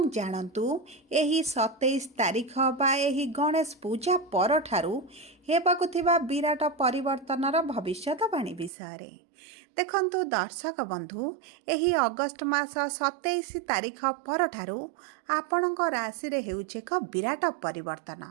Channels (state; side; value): drops out; left; at 8.7 s